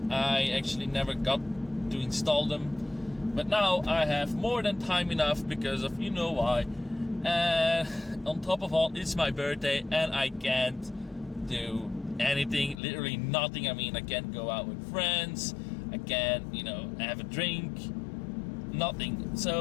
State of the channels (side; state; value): right; drops out; at 12.8 s